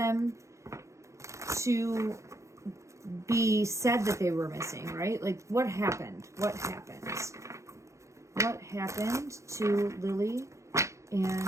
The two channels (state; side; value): late; left; 0.14 ms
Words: to be said that they were missing, right? Like what happened to Lily